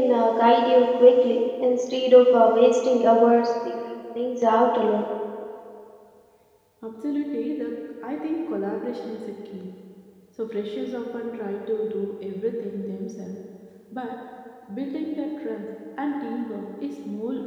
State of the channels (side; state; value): both; identical; correlation 1.00